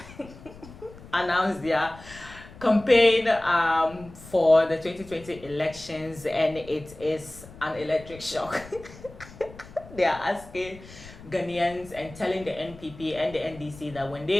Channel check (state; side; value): noise; left; rumble, 18 dB below the sound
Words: announced their campaign for the 2020 elections, and it is an electric shock. They are asking Ghanaians and telling the NPP and the NDC that when